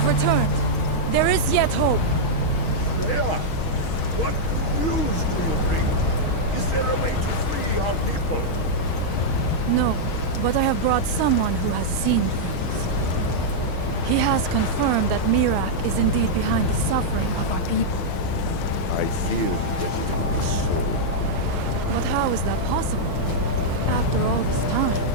have returned. There is yet hope. Freya, what news do you bring? Is there a way to free our people? No, but I have brought someone who has seen things. He has confirmed that Mirak is indeed behind the suffering of our people. I feared that it would be so. But how is that possible? After all this time?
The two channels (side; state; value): right; late; 6.3 ms